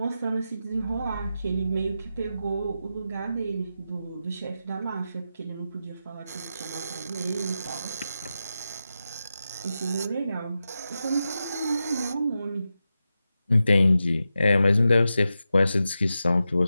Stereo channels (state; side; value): inverted; both; correlation -0.90